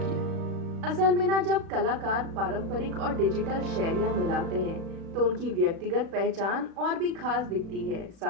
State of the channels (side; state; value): left; late; 36 ms